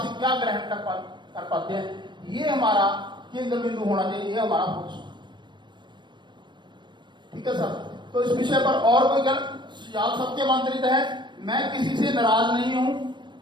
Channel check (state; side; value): late; left; 0.22 ms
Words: क्या ग्रहण कर पाते हैं, ये हमारा केंद्र बिंदु होना चाहिए, ये हमारा फोकस। ठीक है सर? तो इस विषय पर और कोई सुझाव सबके आमंत्रित है। मैं किसी से नाराज नहीं हूं,